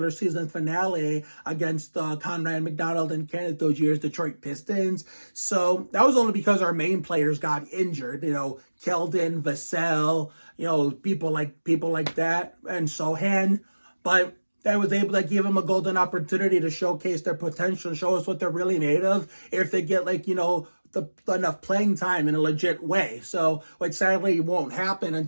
season finale against Conrad McDonald and Kenneth those years, Detroit Pistons. So that was only because our main players got injured, Keldon, Vassell, people like that, and Sohan. But that was able to give them a golden opportunity to showcase their potential, show us what they're really made of if they get enough playing time in a legit way. So, which sadly won't happen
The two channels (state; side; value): inverted; both; correlation -1.00